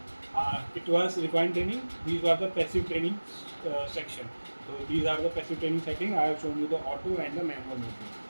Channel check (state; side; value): inverted; both; correlation -1.00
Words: It was refined training. These are the passive training section. So these are the passive training setting. I have shown you the auto and the manual movement.